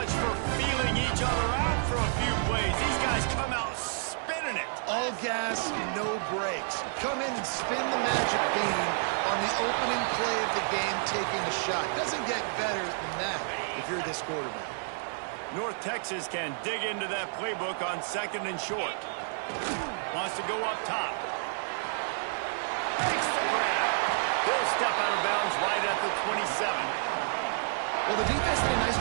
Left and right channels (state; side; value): silent; left; 56 dB below the other